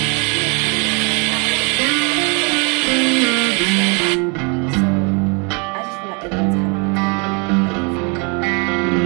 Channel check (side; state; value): left; quieter; 33.8 dB